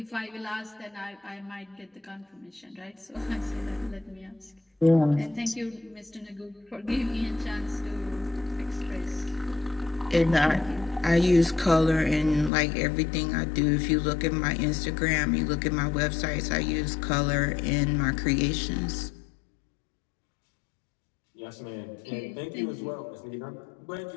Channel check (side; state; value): right; drops out; at 12.5 s